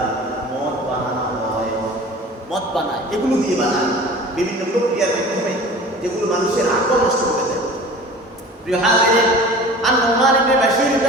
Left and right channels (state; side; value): normal; both; correlation 0.41